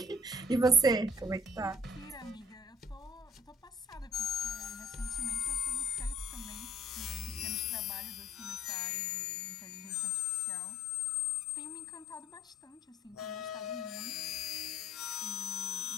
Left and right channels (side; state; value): both; normal; correlation 0.55